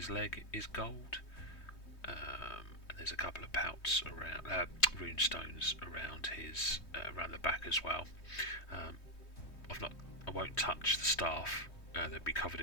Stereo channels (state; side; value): late; right; 3.2 ms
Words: leg is gold, and there's a couple of pouts around, rune stones around his, around the back as well. I won't touch the staff, they'll be covered